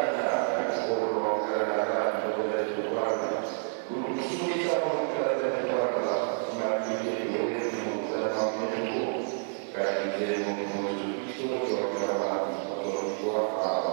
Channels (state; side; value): silent; left; 58 dB below the other